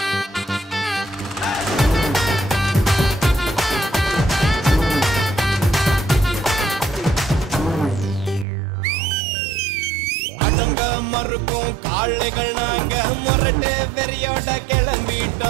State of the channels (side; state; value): left; drops out; at 8.5 s